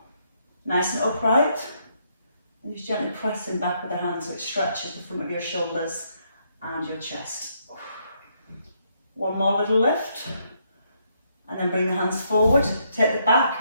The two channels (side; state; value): both; inverted; correlation -0.74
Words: nice and upright. And just gently pressing back with the hands so it stretches the front of your shoulders and your chest. One more little lift. And then bring the hands forward. Take the back